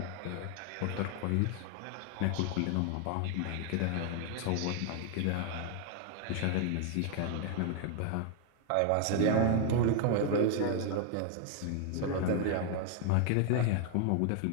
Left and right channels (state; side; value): different; both; correlation 0.00